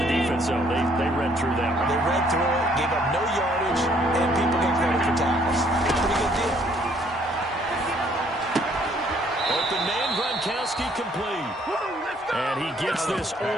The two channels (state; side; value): normal; both; correlation 0.64